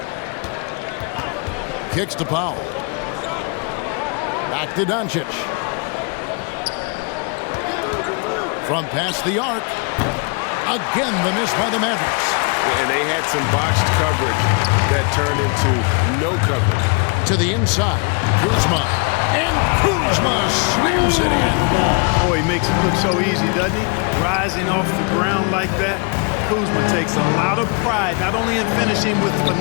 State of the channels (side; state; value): right; quieter; 34.1 dB